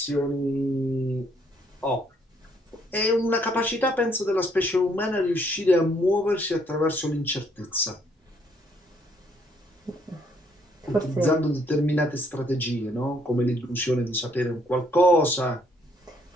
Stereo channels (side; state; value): both; normal; correlation 0.68